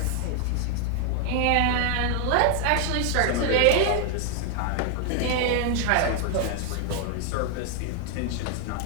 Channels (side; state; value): both; different; correlation 0.00